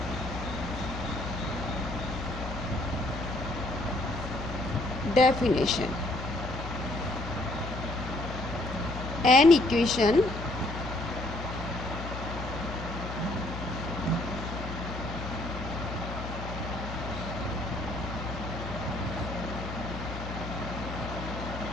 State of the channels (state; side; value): noise; left; hum, 7 dB below the sound